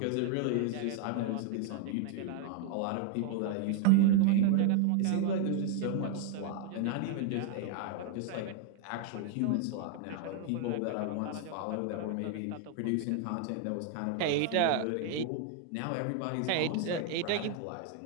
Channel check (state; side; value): different; both; correlation 0.00